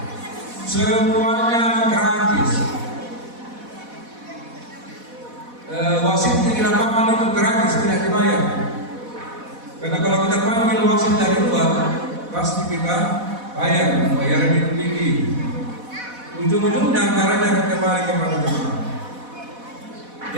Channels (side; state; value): left; late; 4.1 ms